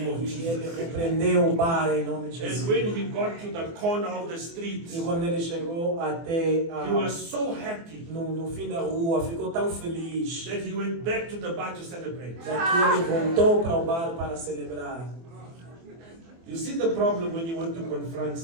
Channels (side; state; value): left; late; 24 ms